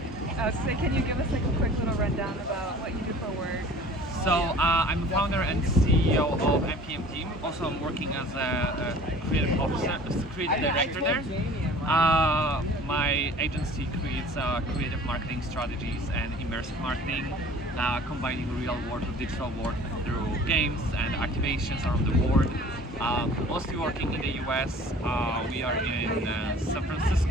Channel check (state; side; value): normal; both; correlation 0.46